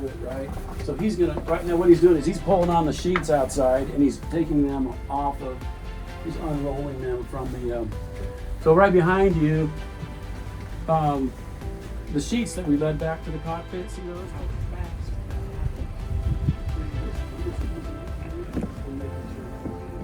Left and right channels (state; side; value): identical; both; correlation 1.00